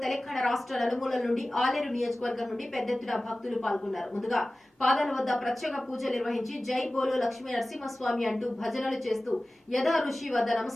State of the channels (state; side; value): normal; both; correlation 0.97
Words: తెలంగాణ రాష్ట్ర నలుమూలల నుండి ఆలేరు నియోజకవర్గం నుండి పెద్ద ఎత్తున భక్తులు పాల్గొన్నారు. ముందుగా పాదాల వద్ద ప్రత్యేక పూజలు నిర్వహించి జై బోలో లక్ష్మీ నరసింహస్వామి అంటూ భజనలు చేస్తూ యథా ఋషి వద్ద